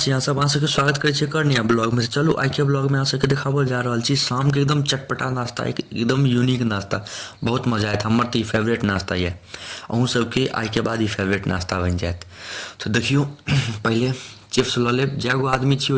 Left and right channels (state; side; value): identical; both; correlation 1.00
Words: अहाँ सब? अहाँ सबके स्वागत करै छी कर नया ब्लॉग में। चलू आइ के ब्लॉग में अहाँ सबके देखाबल जा रहल छी शाम के एकदम चटपटा नाश्ता, एकदम यूनिक नाश्ता। बहुत मजा आयत। हमर तऽ ई फेवरेट नाश्ता ये, अहूँ सबके आइ के बाद ई फेवरेट नाश्ता बनि जायत। तो देखियो पहले चिप्स लऽ लेब। जै गो आदमी छी